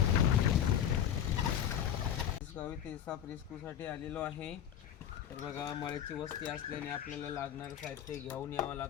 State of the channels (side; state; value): right; quieter; 9.7 dB